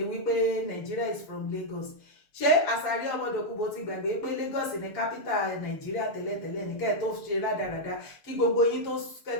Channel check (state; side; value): late; right; 6.9 ms